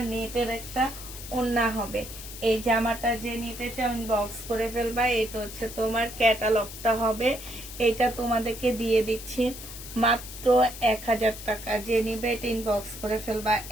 নেটের একটা ওড়না হবে। এই জামাটা যে নিতে চাও ইনবক্স করে ফেলবা। এটা হচ্ছে তোমার ক্যাটালগটা হবে। এটা তোমাদেরকে দিয়ে দিচ্ছি মাত্র 1000 টাকা। যে নিবে এটা ইনবক্স করে ফেলবা।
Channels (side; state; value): left; noise; hiss, 12 dB below the sound